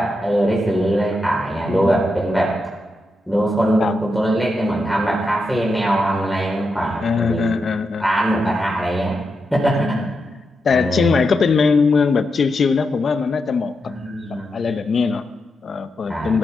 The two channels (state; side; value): normal; both; correlation 0.86